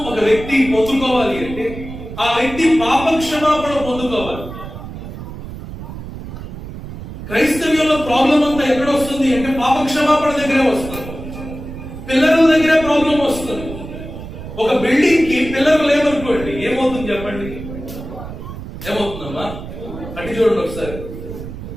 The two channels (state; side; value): noise; right; rumble, 11 dB below the sound